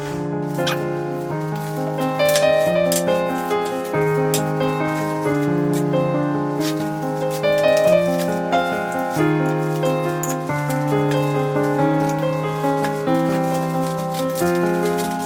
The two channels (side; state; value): both; identical; correlation 1.00